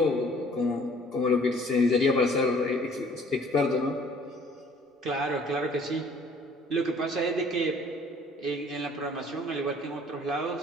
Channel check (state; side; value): normal; both; correlation 0.56